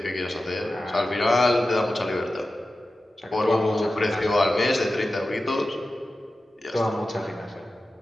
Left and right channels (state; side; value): normal; both; correlation 0.93